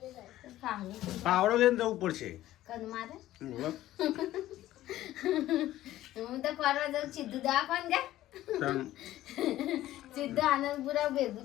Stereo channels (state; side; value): quieter; right; 14.4 dB